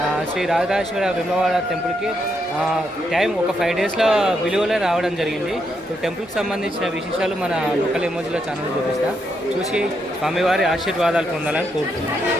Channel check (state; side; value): normal; both; correlation 0.79